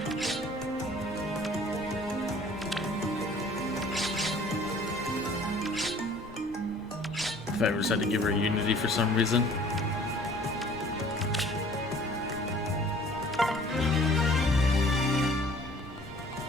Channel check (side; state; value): both; normal; correlation 0.52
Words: If I ever decided to give her Unity for some reason.